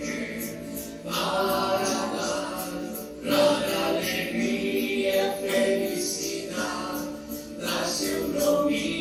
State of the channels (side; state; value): both; identical; correlation 1.00